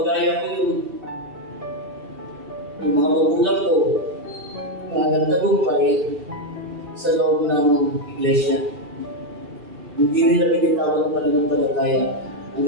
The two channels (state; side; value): late; left; 2.5 ms